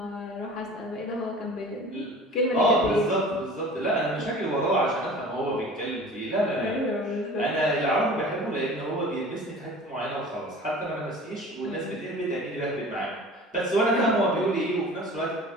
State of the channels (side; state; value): both; normal; correlation 0.42